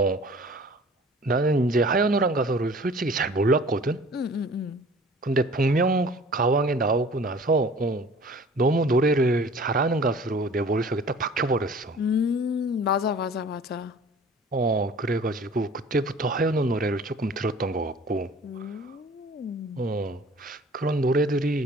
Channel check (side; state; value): both; normal; correlation 0.47